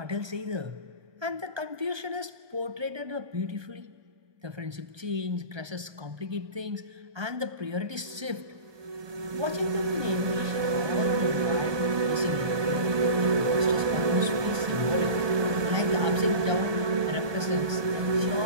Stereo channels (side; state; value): left; late; 1.3 ms